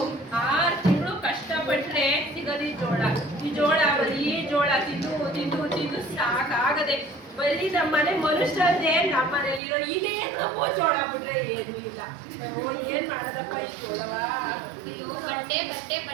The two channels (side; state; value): left; drops out; at 9.6 s